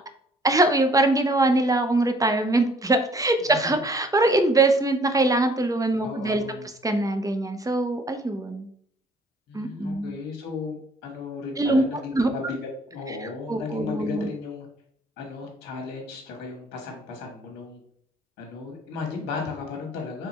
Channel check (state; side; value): normal; both; correlation 0.58